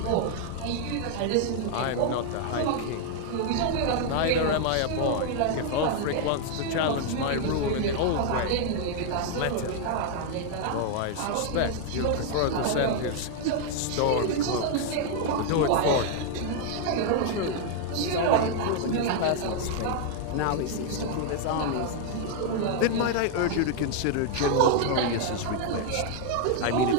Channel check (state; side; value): different; both; correlation 0.00